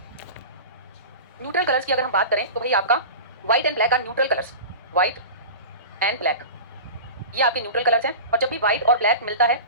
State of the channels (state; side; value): inverted; both; correlation -0.32